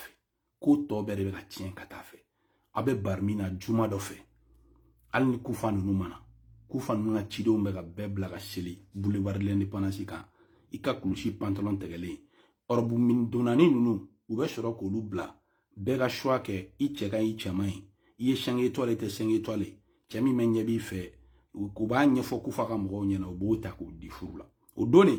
Ko tɔ bɛɛ de bɛ ka tiɲɛ ka taa fɛ. A bɛ bari min na juma dɔ fɛ. Hali ni kufa ninnu mana. Kufa ninnu ka cidenw bɛ ka bɛɛ bila ka seli boulevard de l'indépendance kan. I ka kulusi pantalon tɛgɛlen. Ɔrɔbu min donnani ninnu u bɛ sɔrɔ k'olu bila. Bɛɛ ka choix kɛ i cɛ ka i cɛman ye. I ye 5 étoiles tɛ 5 étoiles. Cɛ min bɛ ɲɛ b'i fɛ. U b'a ɲɛfɔ kufa ka mɔgɔw ɲɛna u b'o ta k'o di furu la. O don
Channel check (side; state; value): both; identical; correlation 1.00